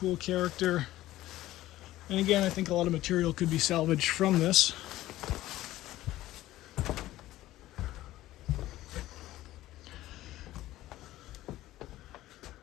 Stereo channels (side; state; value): right; quieter; 15.5 dB